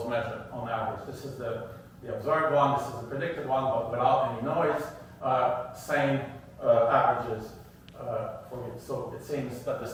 measured on average. This is the observed one, this is the predicted one, but without any noise. Same averages for it. So it seems that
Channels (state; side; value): identical; both; correlation 1.00